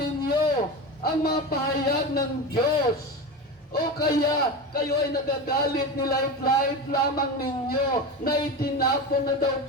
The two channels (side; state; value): both; normal; correlation 0.24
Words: ang mga pahayag ng Diyos? O kaya kayo ay nagagalit, nilait-lait lamang ninyo na itinapon na daw